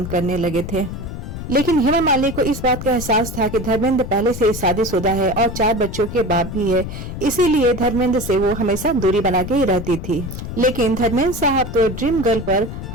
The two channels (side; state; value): left; noise; rumble, 8 dB below the sound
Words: करने लगे थे। लेकिन हेमा मालिनी को इस बात का एहसास था कि धर्मेंद्र पहले से शादीशुदा है और 4 बच्चों के बाप भी है, इसीलिए धर्मेंद्र से वो हमेशा दूरी बना के ही रहती थी। लेकिन धर्मेंद्र साहब तो ड्रीम गर्ल पर